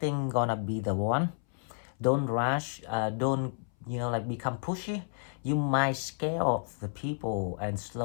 gonna be the one, don't rush. Don't become pushy. You might scare off the people and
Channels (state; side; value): silent; right; 57 dB below the other